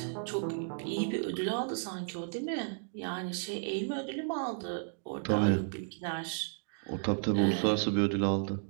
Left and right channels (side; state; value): left; silent; digital silence